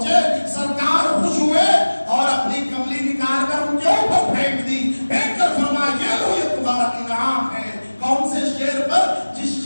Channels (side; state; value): both; inverted; correlation -1.00